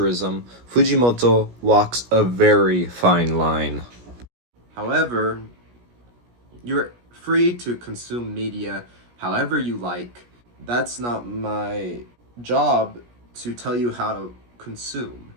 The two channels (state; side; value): late; left; 17 ms